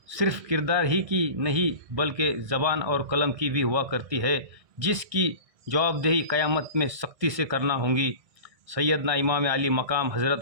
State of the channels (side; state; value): left; late; 1.6 ms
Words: सिर्फ़ किरदार ही की नहीं बल्कि ज़बान और कलम की भी हुआ करती है, जिसकी जवाबदेही क़यामत में सख्ती से करना होगी। सैयदना इमाम अली मकाम